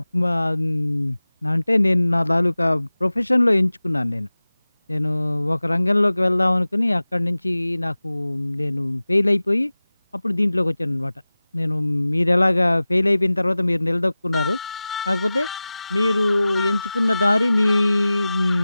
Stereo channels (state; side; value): inverted; both; correlation -0.97